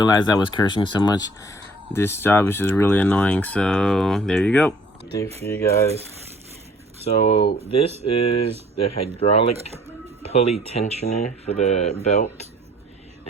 I was cursing so much. This job is just really annoying, so there you go. Update for you guys. So this is the hydraulic pulley tensioner for the belt,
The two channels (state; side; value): normal; both; correlation 0.56